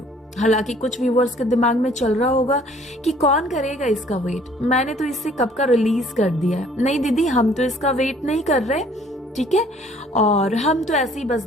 हालांकि कुछ व्यूअर्स के दिमाग में चल रहा होगा कि कौन करेगा इसका वेट, मैंने तो इससे कब का रिलीज कर दिया है। नहीं दीदी, हम तो इसका वेट नहीं कर रहे, ठीक है, और हम तो ऐसे ही बस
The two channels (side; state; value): both; normal; correlation 0.57